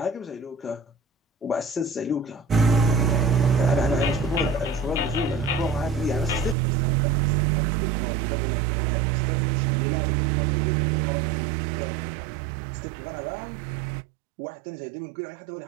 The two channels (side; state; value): left; drops out; at 6.6 s